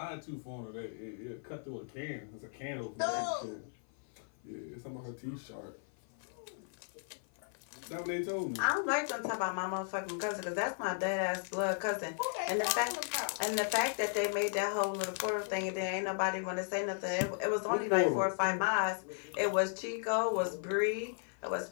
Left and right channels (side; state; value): right; silent; 54 dB below the other